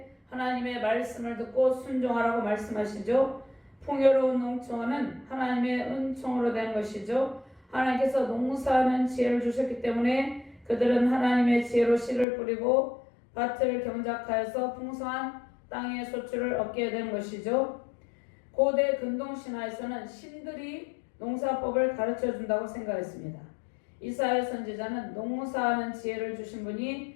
하나님의 말씀을 듣고 순종하라고 말씀하시죠. 풍요로운 농촌은 하나님의 은총으로 된 것이죠. 하나님께서 농사하는 지혜를 주셨기 때문에 그들은 하나님의 지혜로 씨를 뿌리고 밭을 경작하여서 풍성한 땅의 소출을 얻게 된 것이죠. 고대 근동신화에서는 신들이 농사법을 가르쳐 준다고 생각했습니다. 이사야 선지자는 농사하는 지혜를 주신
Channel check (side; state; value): right; drops out; at 12.2 s